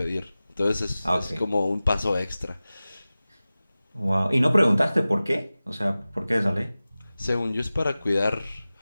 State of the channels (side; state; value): both; inverted; correlation -0.97